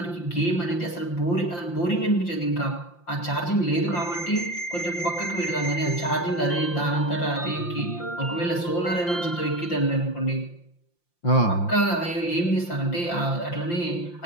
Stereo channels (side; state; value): right; late; 5.8 ms